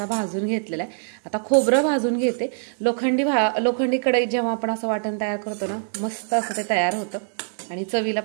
भाजून घेतलेला आहे। आता खोबरं भाजून घेते। लोखंडी कढईत जेव्हा आपण असं वाटण तयार करतो ना, मस्त असं ते तयार होतं आणि चवीला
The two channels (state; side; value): silent; left; 63 dB below the other